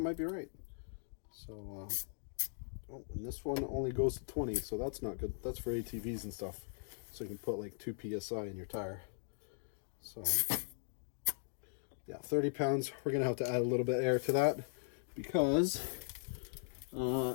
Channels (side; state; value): right; silent; digital silence